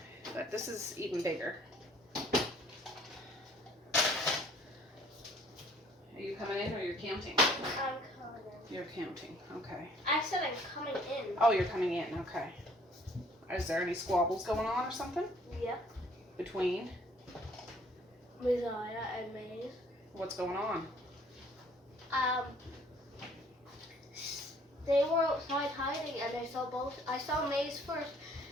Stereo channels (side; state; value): both; normal; correlation 0.58